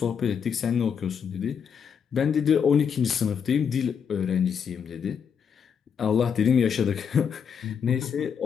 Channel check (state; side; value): quieter; right; 7.2 dB